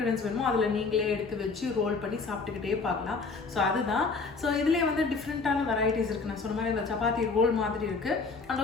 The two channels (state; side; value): quieter; right; 4.3 dB